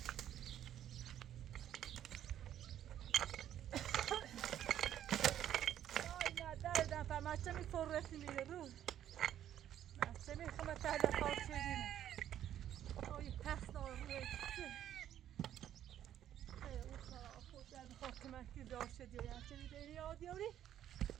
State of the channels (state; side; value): quieter; left; 11.0 dB